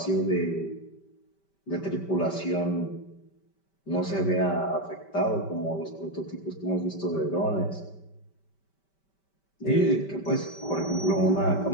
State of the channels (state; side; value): late; right; 5.2 ms